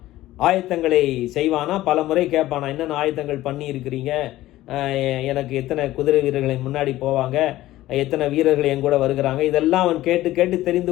ஆயத்தங்களை செய்வானா. பல முறை கேட்பானா, என்னென்ன ஆயத்தங்கள் பண்ணி இருக்கிறீங்க, எனக்கு எத்தனை குதிரை வீரர்களை முன்னாடி போவாங்க, எத்தனை வீரர்கள் என் கூட வருகிறாங்க, இதெல்லாம் அவன் கேட்டு கேட்டு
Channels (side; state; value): right; quieter; 15.7 dB